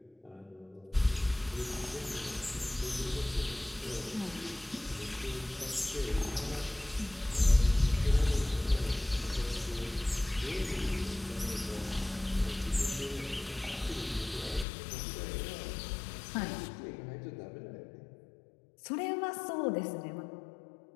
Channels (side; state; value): right; drops out; at 14.7 s